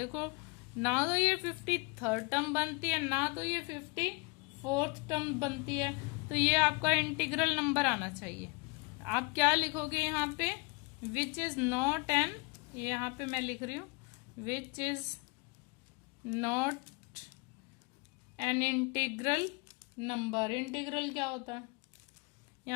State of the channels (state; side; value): quieter; right; 30.1 dB